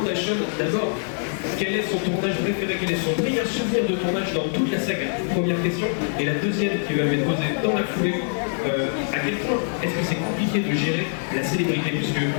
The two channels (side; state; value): right; silent; 59 dB below the other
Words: à Sean d'abord quel est son tournage préféré, quel est son meilleur souvenir de tournage dans toute la saga. Première question. Et la deuxième qui va m'être posée dans la foulée, à quel point est-ce que c'est compliqué de gérer la célébrité, puisque